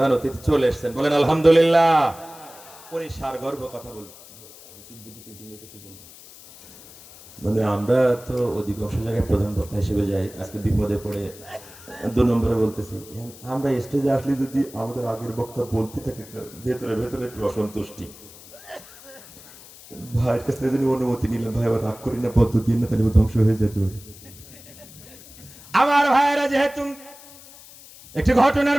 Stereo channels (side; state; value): left; noise; hiss, 20 dB below the sound